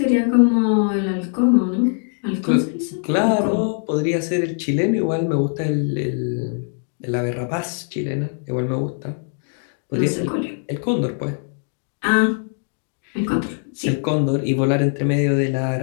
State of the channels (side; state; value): right; silent; 65 dB below the other